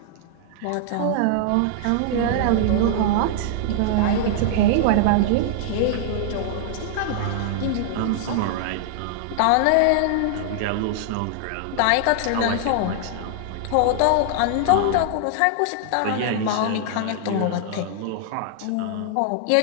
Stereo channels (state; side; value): different; both; correlation -0.01